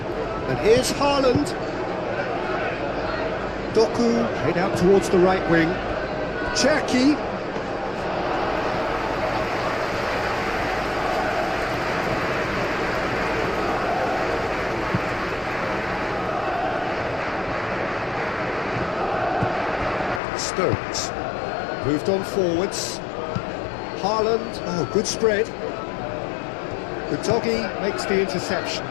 And here's Haaland. Doku played out towards the right wing. Cherki. Stones. Moved on forwards. Haaland. Oh, good spread. Utogi makes the interception.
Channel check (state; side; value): drops out; right; at 20.2 s